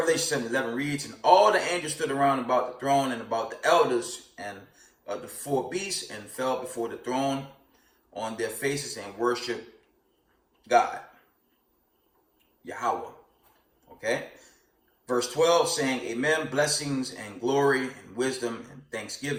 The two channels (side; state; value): both; identical; correlation 1.00